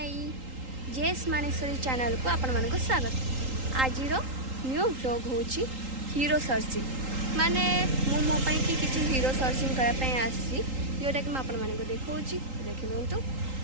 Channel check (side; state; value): left; late; 3.8 ms